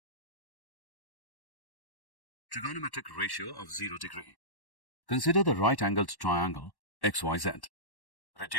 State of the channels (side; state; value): right; late; 1.1 ms